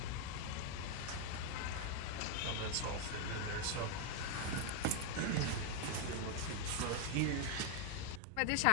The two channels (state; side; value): different; both; correlation 0.01